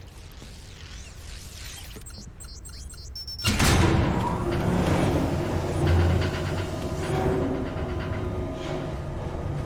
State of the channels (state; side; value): identical; both; correlation 1.00